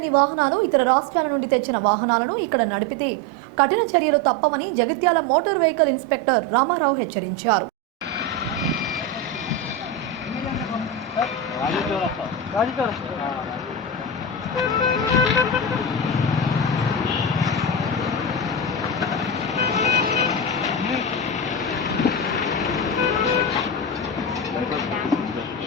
వాహనాలు ఇతర రాష్ట్రాల నుండి తెచ్చిన వాహనాలను ఇక్కడ నడిపితే కఠిన చర్యలు తప్పవని Jagtial motor vehicle inspector Ramarao హెచ్చరించారు.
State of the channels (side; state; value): both; normal; correlation 0.17